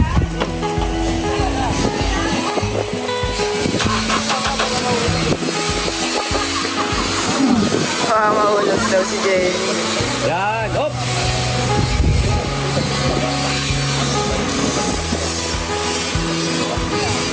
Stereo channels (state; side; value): identical; both; correlation 1.00